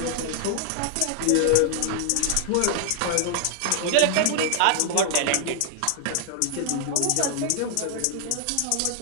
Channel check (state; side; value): different; both; correlation 0.00